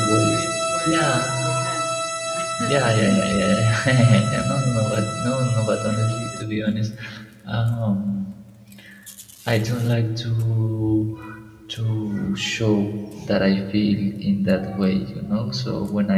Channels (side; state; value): both; identical; correlation 1.00